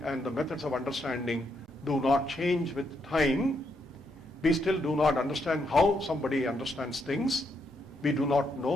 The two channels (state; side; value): normal; both; correlation 0.78